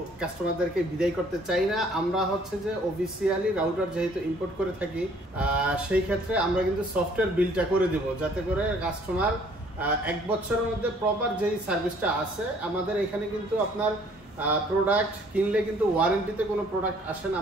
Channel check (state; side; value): normal; both; correlation 0.59